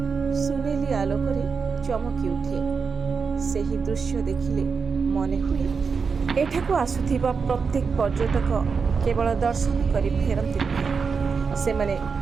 ସୁନେଲି ଆଲୋକରେ ଚମକି ଉଠେ। ସେହି ଦୃଶ୍ୟ ଦେଖିଲେ ମନେ ହୁଏ ଏଠାକୁ ଆସୁଥିବା ପ୍ରତ୍ୟେକ ପର୍ଯ୍ୟଟକ କେବଳ ଦର୍ଶନ କରି ଫେରନ୍ତି ନାହିଁ, ସେମାନେ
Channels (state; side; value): quieter; left; 5.4 dB